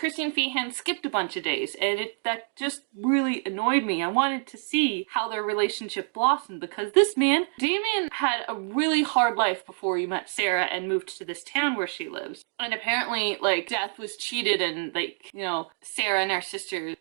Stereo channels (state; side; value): silent; left; 59 dB below the other